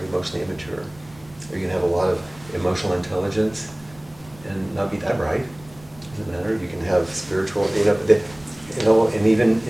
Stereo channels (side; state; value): right; noise; rumble, 23 dB below the sound